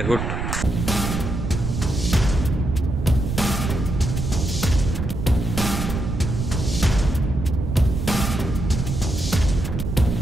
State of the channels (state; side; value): noise; right; rumble, 3 dB below the sound